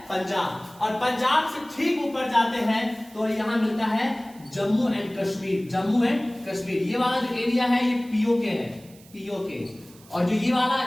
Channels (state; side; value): noise; right; hiss, 24 dB below the sound